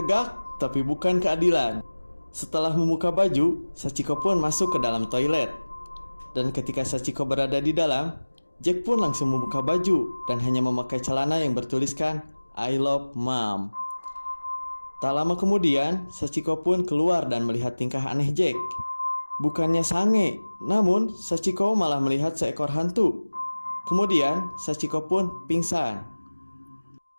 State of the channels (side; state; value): both; inverted; correlation -1.00